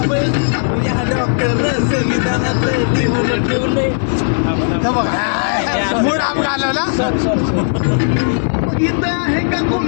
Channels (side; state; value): right; silent; 61 dB below the other